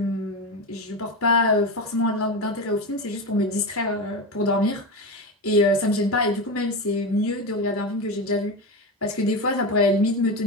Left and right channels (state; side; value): normal; both; correlation 0.19